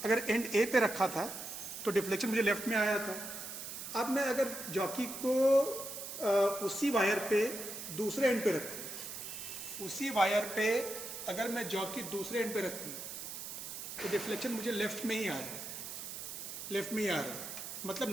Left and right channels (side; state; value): right; noise; hiss, 8 dB below the sound